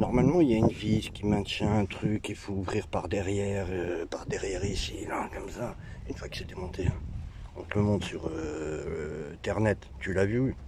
il y a une vis qui maintient un truc, il faut ouvrir par derrière ici, là, comme ça. Une fois que c'est démonté, hein. On te le montre sur Internet. Tu l'as vu?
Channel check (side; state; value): both; identical; correlation 1.00